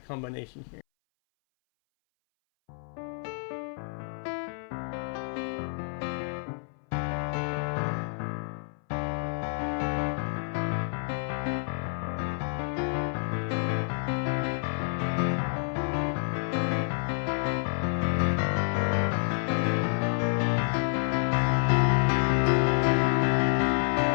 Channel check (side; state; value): right; silent; 59 dB below the other